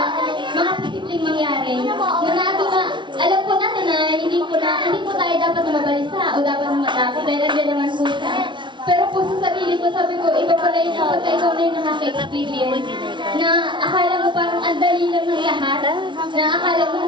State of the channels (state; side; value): late; left; 0.23 ms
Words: mga posibleng mangyari. Alam po natin na hindi po tayo dapat na mabalisa o dapat na matakot dahil nandiyan naman po siya. Pero po sa sarili ko, sabi ko, iba pala yung kapag ikaw na yung nakaka-experience na akala mo parang ang dali lang ng lahat, na akala mo